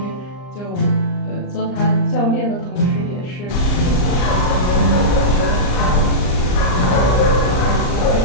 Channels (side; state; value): right; late; 39 ms